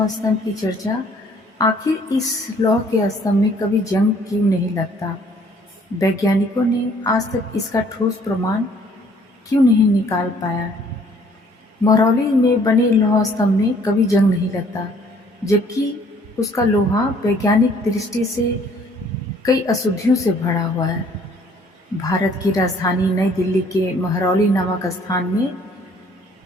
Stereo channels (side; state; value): both; normal; correlation 0.59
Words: स्तंभ की चर्चा, आखिर इस लौह के स्तंभ में कभी जंग क्यों नहीं लगता। वैज्ञानिकों ने आज तक इसका ठोस प्रमाण क्यों नहीं निकाल पाया। महरौली में बने लौह स्तंभ में कभी जंग नहीं लगता, जबकि उसका लोहा वैज्ञानिक दृष्टि से कई अशुद्धियों से भरा हुआ है। भारत की राजधानी नई दिल्ली के महरौली नामक स्थान में